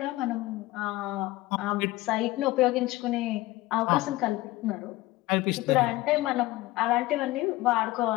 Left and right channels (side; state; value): right; quieter; 18.4 dB